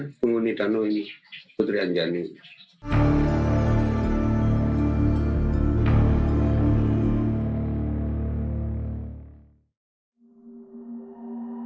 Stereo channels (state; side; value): identical; both; correlation 1.00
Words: penghuni danau ini, Putri Anjani.